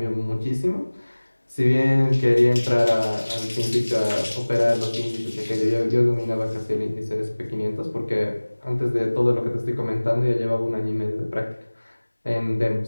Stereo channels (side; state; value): both; inverted; correlation -1.00